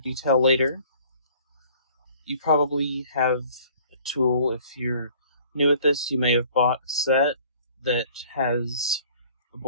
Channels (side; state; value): both; inverted; correlation -0.53